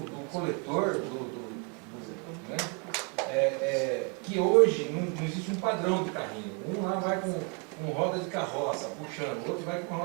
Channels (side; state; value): left; quieter; 35.1 dB